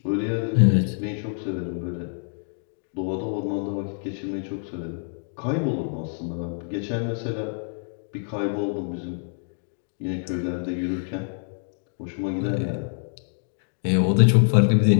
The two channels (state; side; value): silent; right; digital silence